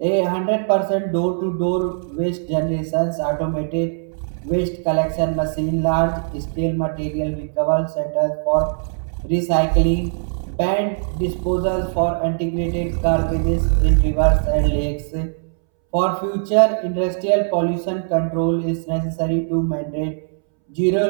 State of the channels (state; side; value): silent; left; 65 dB below the other